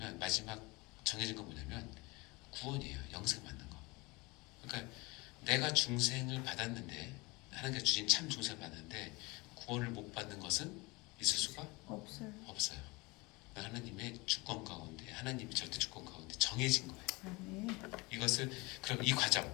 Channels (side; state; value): right; quieter; 23.7 dB